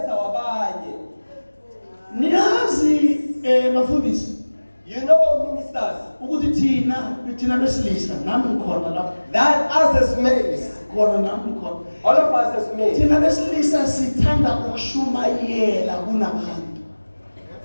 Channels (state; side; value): inverted; both; correlation -1.00